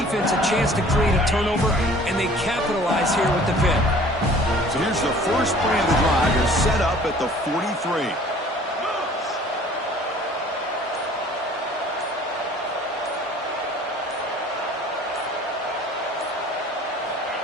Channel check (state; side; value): normal; both; correlation 0.50